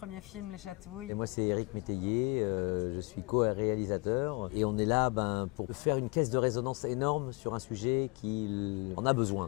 film, Les Chatouilles. Et moi, c'est Éric Métayer, je suis co-réalisateur. Et on est là pour faire une caisse de résonance énorme sur un sujet qui en a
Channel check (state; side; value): quieter; right; 26.8 dB